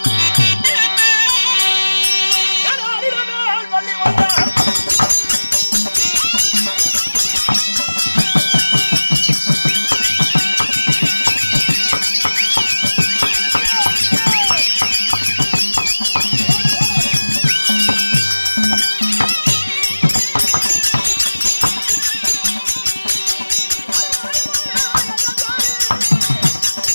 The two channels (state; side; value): inverted; both; correlation -1.00